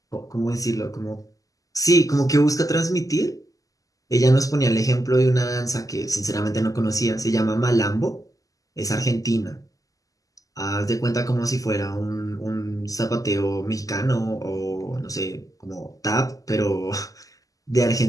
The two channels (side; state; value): right; late; 0.17 ms